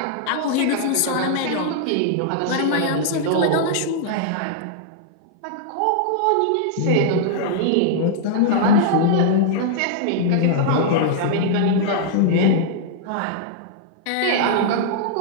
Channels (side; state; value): both; different; correlation -0.01